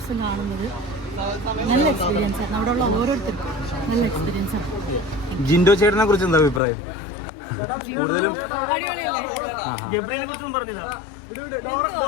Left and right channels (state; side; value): drops out; right; at 6.6 s